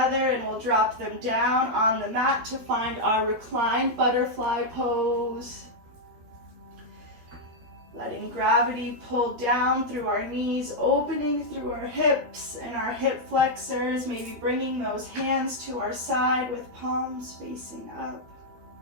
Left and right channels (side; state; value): left; late; 13 ms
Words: and we'll drop them down on the mat to find our reclined butterfly pose. Letting gravity pull down through our knees, opening through our hips and our hip flexors, maybe bringing those hands to our side with palms facing up.